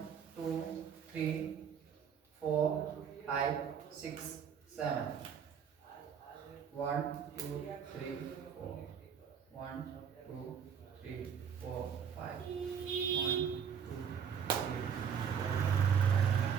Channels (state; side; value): quieter; left; 7.5 dB